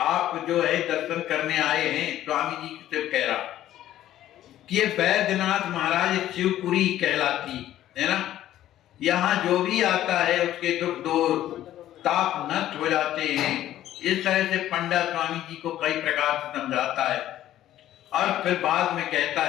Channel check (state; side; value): quieter; right; 12.9 dB